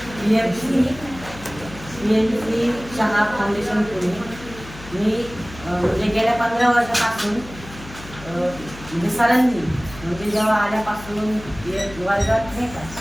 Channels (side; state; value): left; noise; hum, 16 dB below the sound